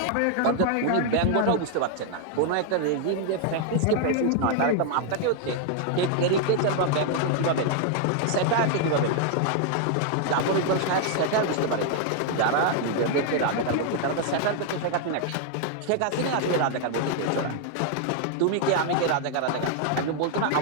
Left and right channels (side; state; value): both; different; correlation 0.00